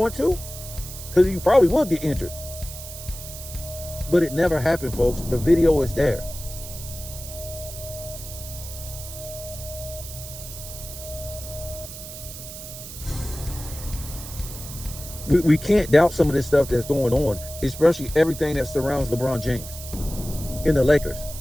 to? Because you probably would get injured. But it never happened, folks. The video is there. We can't doubt some of this stuff that's going on, especially everything that surrounds LeBron James in the Lakers.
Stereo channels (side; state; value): right; noise; hiss, 12 dB below the sound